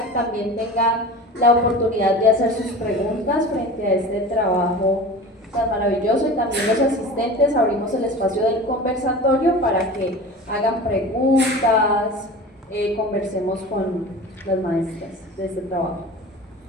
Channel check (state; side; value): normal; both; correlation 0.35